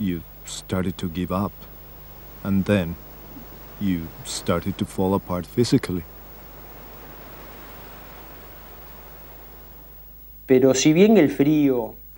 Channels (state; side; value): identical; both; correlation 1.00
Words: started to give up, and then you started to fall apart physically. Pero si bien el frío,